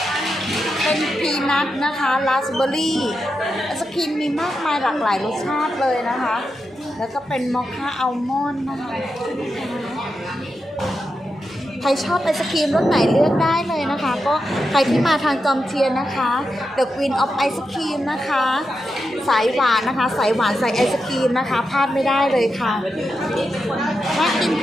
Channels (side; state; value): both; normal; correlation 0.87